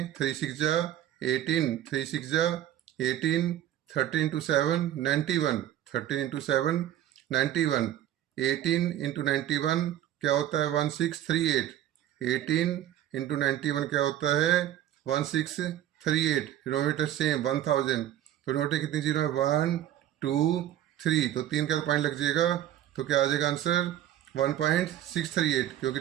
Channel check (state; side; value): quieter; left; 12.1 dB